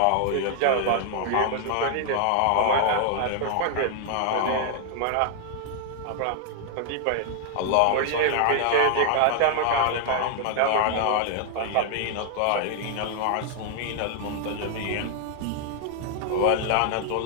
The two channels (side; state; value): both; different; correlation 0.00